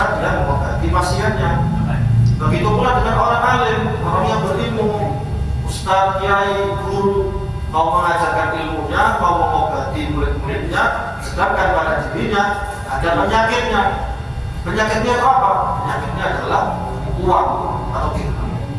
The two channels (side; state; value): both; identical; correlation 1.00